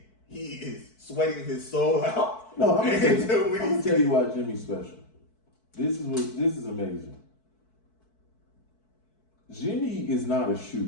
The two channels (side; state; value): right; late; 4.6 ms